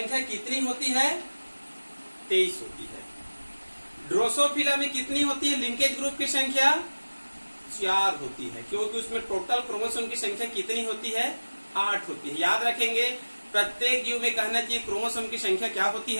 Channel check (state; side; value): inverted; both; correlation -1.00